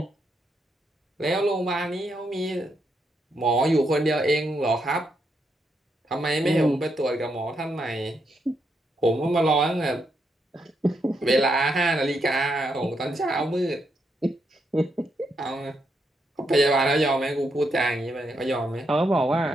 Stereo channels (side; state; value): both; normal; correlation 0.80